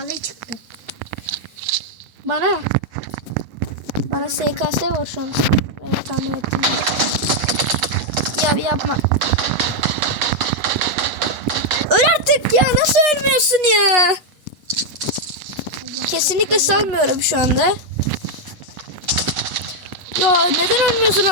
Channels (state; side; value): late; left; 8.1 ms